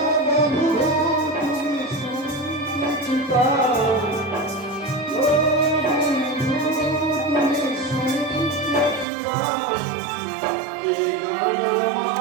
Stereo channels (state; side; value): drops out; left; at 9.1 s